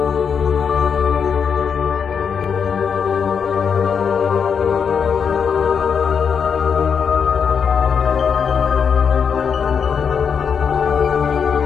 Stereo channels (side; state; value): right; quieter; 6.7 dB